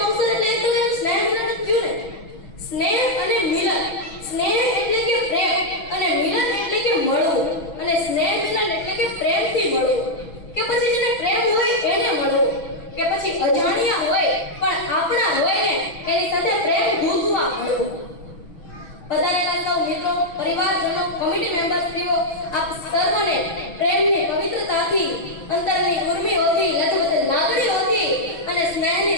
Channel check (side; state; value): right; late; 6.1 ms